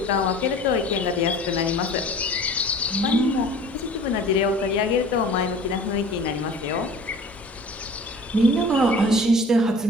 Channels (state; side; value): normal; both; correlation 0.44